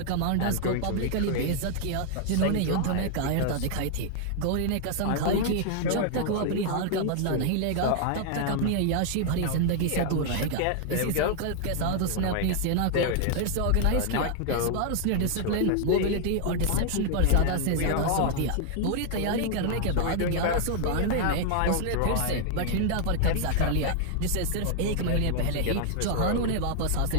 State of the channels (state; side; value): different; both; correlation 0.00